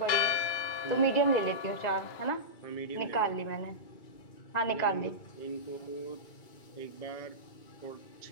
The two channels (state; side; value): late; right; 2.3 ms